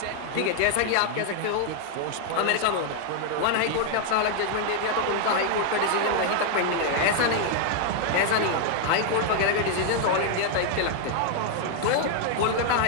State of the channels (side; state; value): both; different; correlation 0.00